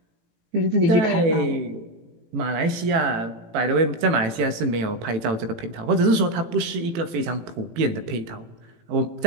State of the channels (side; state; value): left; late; 18 ms